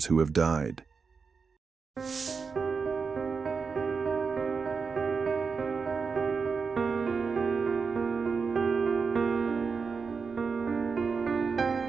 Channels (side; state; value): left; quieter; 5.2 dB